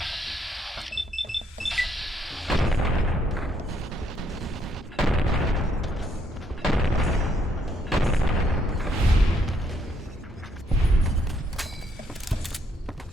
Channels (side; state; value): both; normal; correlation 0.72